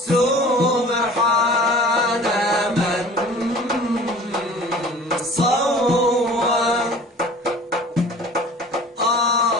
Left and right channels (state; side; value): normal; both; correlation 0.44